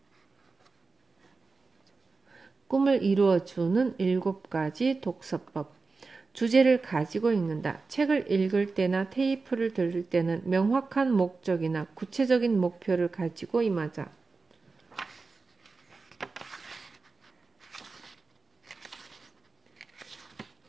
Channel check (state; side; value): quieter; left; 4.1 dB